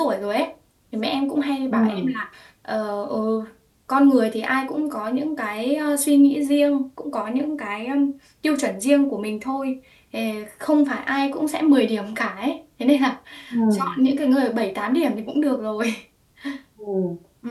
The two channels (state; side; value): identical; both; correlation 1.00